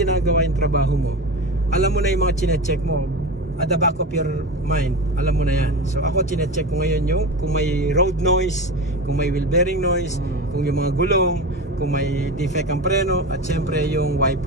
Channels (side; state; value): both; normal; correlation 0.25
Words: yung trabaho mo, alam mo na yung mga chine-check mo, at the back of your mind, alam mo na yan. So ako chine-check ko ngayon yung kung may road noise, kung may wheel bearing noise, kung yung mga gulong, kung may defect ang preno, at syempre yung